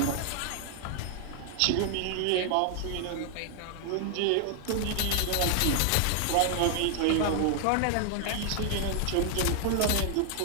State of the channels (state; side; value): different; both; correlation 0.00